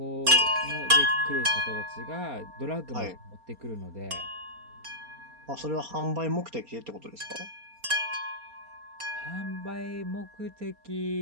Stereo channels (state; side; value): late; left; 4.3 ms